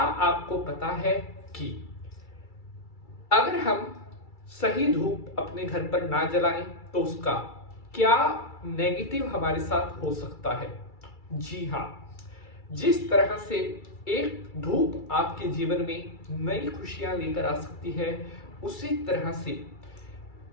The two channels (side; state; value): right; late; 2.3 ms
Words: पता है कि अगर हम सही धूप अपने घर पर ना जलाएं तो उसका क्या नेगेटिव हमारे साथ हो सकता है? जी हाँ, जिस तरह से एक धूप आपके जीवन में नई खुशियां लेकर आ सकती है, उसी तरह से